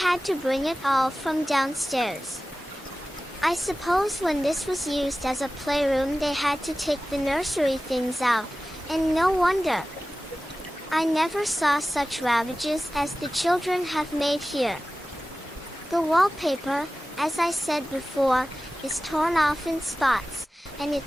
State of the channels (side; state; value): both; normal; correlation 0.96